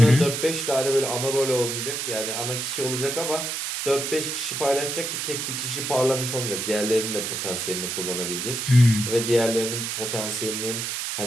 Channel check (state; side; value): noise; right; hiss, 3 dB below the sound